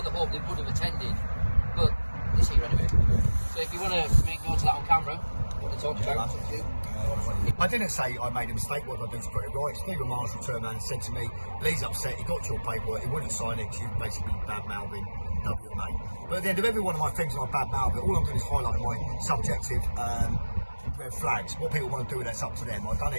hoped they would have attended, but it's here anyway. So if you want to make note of that on camera, what they talked about, it's up to you. I didn't say I made a mistake. What I did to put it right. Stephen Marshall turned around and said to me, Lee's upset, he got your paperwork, he wouldn't sign it, you basically bad-mouthing WMA. But at the end of every one of my things I bad-mouth it, all I'm doing is highlighting my subjective red flags. What people want to do with that's up to them. I've done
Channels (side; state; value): both; inverted; correlation -1.00